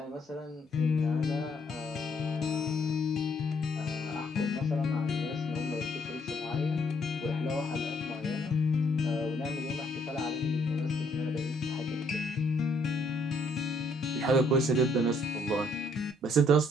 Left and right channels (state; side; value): normal; both; correlation 0.68